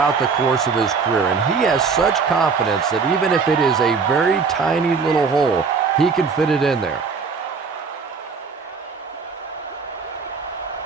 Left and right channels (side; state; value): left; quieter; 5.2 dB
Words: the course of his career, and he has such confidence that even if it is a very tiny little hole, he can fit it in there.